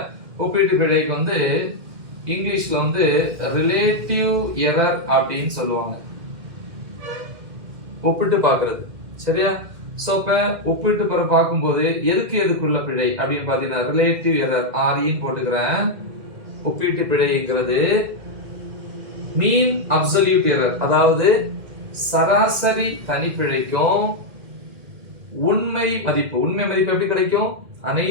ஒப்பீட்டு பிழைக்கு வந்து இங்கிலீஷ்ல வந்து ரிலேட்டிவ் எரர் அப்படின்னு சொல்லுவாங்க, ஒப்பிட்டு பார்க்கிறது. சரியா? சோ இப்ப ஒப்பிட்டு பார்க்கும்போது எதுக்குள்ள பிழை அப்படின்னு பாத்தீங்கன்னா ரிலேட்டிவ் எரர் ஆர்இன்னு போட்டுக்கிறேன். ஒப்பீட்டு பிழைங்கிறது மீன் அப்சல்யூட் எரர், அதாவது சராசரி தனிப்பிழைக்கும் உண்மை மதிப்பு. உண்மை மதிப்பு எப்படி கிடைக்கும்?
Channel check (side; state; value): left; late; 2.1 ms